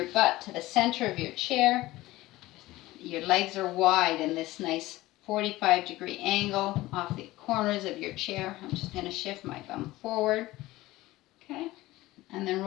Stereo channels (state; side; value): quieter; right; 17.9 dB